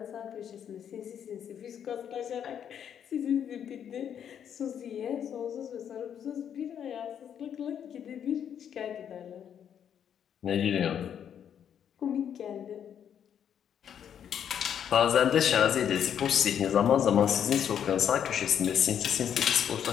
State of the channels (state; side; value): quieter; right; 8.8 dB